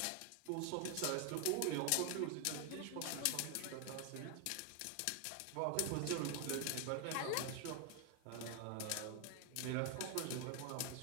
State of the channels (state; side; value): different; both; correlation 0.00